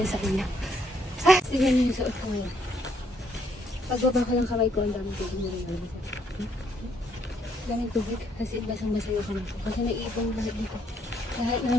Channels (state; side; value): normal; both; correlation 0.71